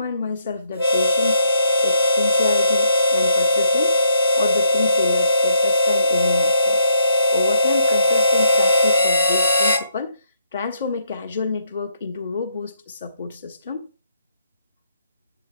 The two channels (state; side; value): inverted; both; correlation -0.75